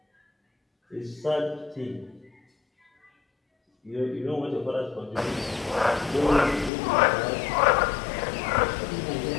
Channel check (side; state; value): right; drops out; at 6.7 s